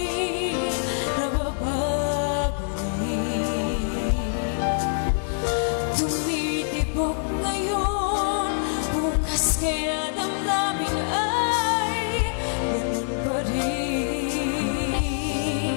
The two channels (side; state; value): right; silent; digital silence